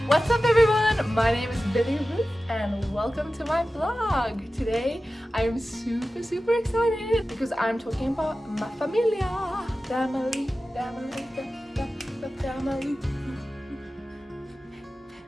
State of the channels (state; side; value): normal; both; correlation 0.94